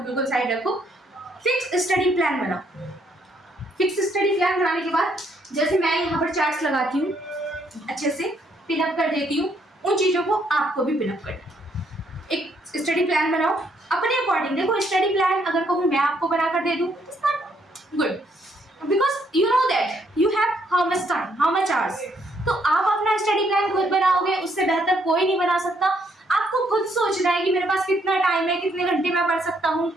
बिल्कुल साइड रखो, फिक्स स्टडी प्लान बनाओ। फिक्स स्टडी प्लान बनाने के बाद, जैसे मैं यहाँ पर चार्ट्स लगाती हूँ, अच्छे से पिनअप कर देती हूँ, उन चीजों को आपको भी पिनअप करना। एक स्टडी प्लान बनाओ अपने अकॉर्डिंग। देखो, स्टडी प्लान अगर कहूँ मैं आपको बनाकर दे दूँ, it's not good, because you know that you have how much time, how much hours. तो आप अपना स्टडी प्लान खुद बनाओगे, उससे बेहतर कोई नहीं बना सकता। आपको खुद सोचना है कि मेरे पास कितना टाइम है, कितने घंटे मैं पढ़ सकता हूँ,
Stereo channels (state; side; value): normal; both; correlation 0.71